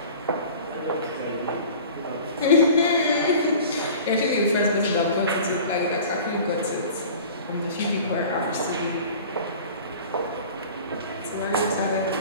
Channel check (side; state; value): both; inverted; correlation -0.42